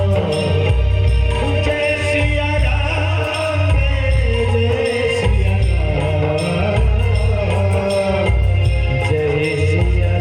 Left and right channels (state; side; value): identical; both; correlation 1.00